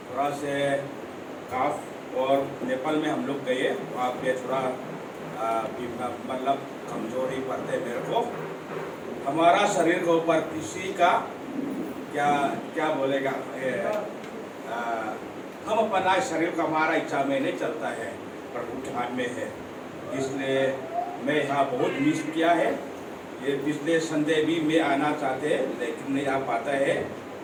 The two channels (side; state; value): both; identical; correlation 1.00